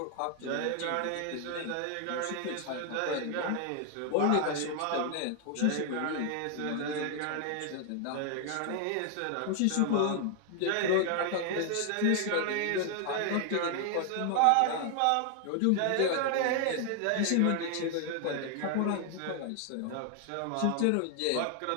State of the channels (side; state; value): both; different; correlation 0.00